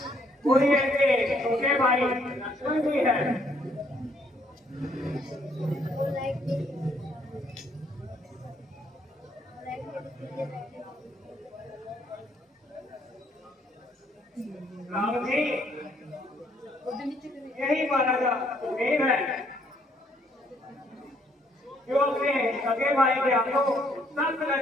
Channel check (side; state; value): both; normal; correlation 0.67